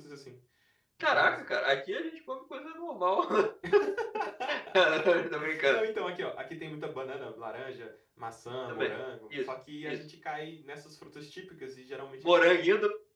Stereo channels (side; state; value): both; identical; correlation 1.00